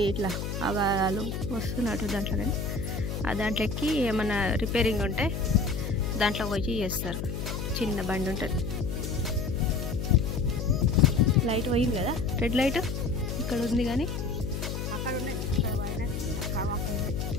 ఇట్లా వాళ్ళు వస్తున్నట్టు దాంట్లో, కానీ ఆ దాంట్లో ఎక్కి ఏమన్నా రిపేరింగ్ ఉంటే దాంట్లో పోయి చేస్తారు. చిన్న బండి ఉంటుంది. లైట్ పోయింది కదా, రెడ్ లైట్ ఇక్కడ ఉంది, కానీ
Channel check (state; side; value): noise; left; hum, 4 dB below the sound